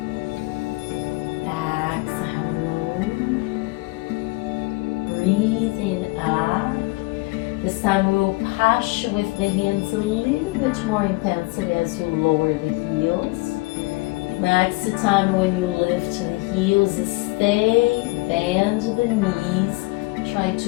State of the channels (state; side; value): quieter; right; 23.6 dB